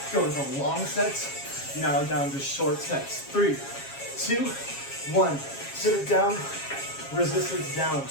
Going from long sets, now down to short sets. 3, 2, 1. Sit it down, resistance down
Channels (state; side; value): late; right; 7.3 ms